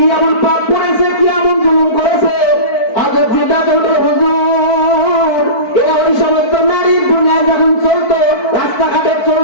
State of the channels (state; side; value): late; right; 4.5 ms